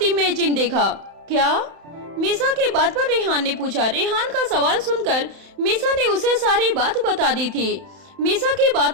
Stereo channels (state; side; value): late; left; 31 ms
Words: इमेजिन देखा। क्या? मीसा के बात पर रेहान ने पूछा। रेहान का सवाल सुनकर मीसा ने उसे सारी बात बता दी थी। मीसा की